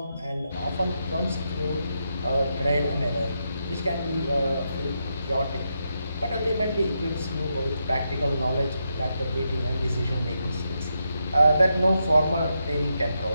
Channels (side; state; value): both; inverted; correlation -0.84